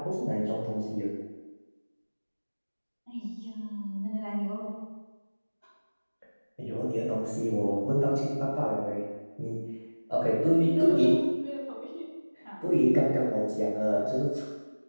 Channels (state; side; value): inverted; both; correlation -1.00